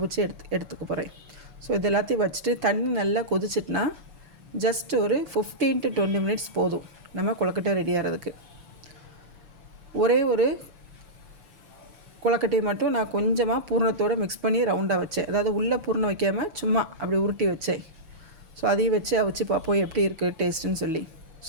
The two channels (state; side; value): late; left; 7.0 ms